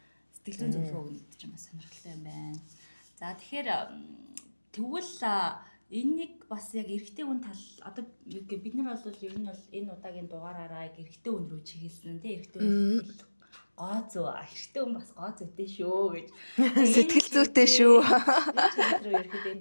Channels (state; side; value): inverted; both; correlation -1.00